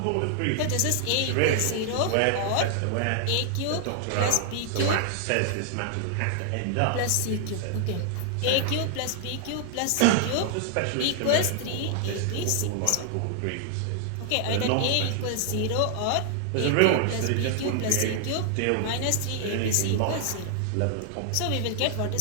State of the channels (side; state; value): both; different; correlation 0.00